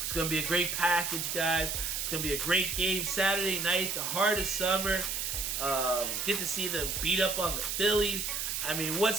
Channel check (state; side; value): noise; right; hiss, 2 dB below the sound